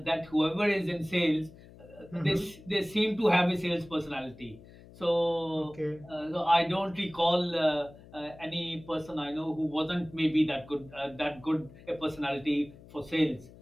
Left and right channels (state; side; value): noise; left; hum, 21 dB below the sound